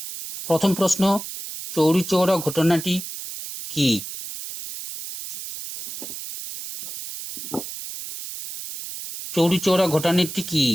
প্রথম প্রশ্ন, চৌরিচৌরা ঘটনাটি কি? চৌরিচৌরা ঘটনাটি কি?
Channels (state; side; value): noise; right; hiss, 9 dB below the sound